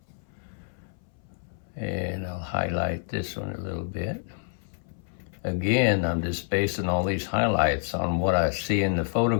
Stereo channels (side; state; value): right; silent; 59 dB below the other